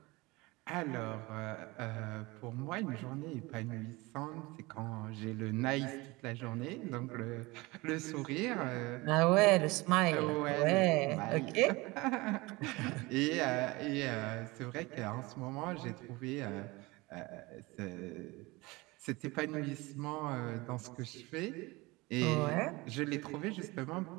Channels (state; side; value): quieter; left; 22.9 dB